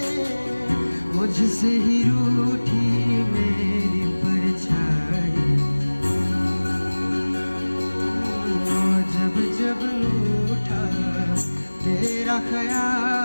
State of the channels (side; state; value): both; inverted; correlation -1.00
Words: मुझसे ही रूठी मेरी परछाई, जब जब उठा तेरा